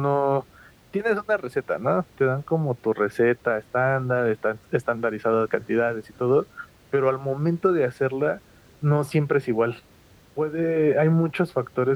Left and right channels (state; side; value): identical; both; correlation 1.00